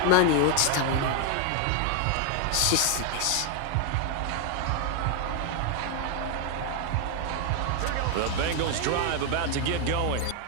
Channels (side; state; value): both; different; correlation 0.01